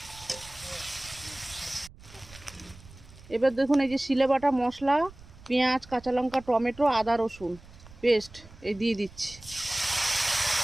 এবার দেখুন এই যে শিলে বাটা মশলা, পেঁয়াজ, কাঁচা লঙ্কা, টমেটো, আদা রসুন পেস্ট এই দিয়ে দিচ্ছি।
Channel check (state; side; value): noise; right; rumble, 21 dB below the sound